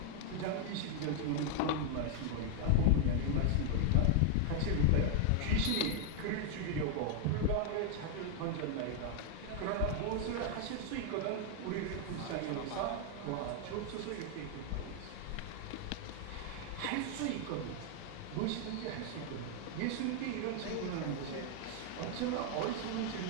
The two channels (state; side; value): different; both; correlation 0.00